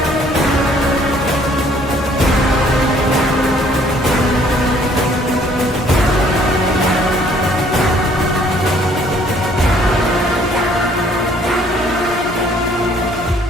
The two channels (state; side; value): normal; both; correlation 0.61